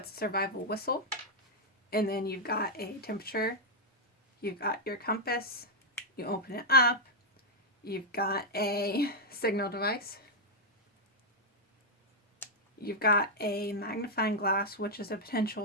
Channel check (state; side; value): normal; both; correlation -0.02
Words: a survival whistle, and then you've got a temperature, you've got your compass, you open it up, you've got a signal device, you've got a magnifying glass, which is a